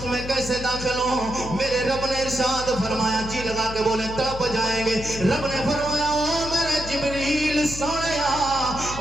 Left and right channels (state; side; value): noise; left; hum, 10 dB below the sound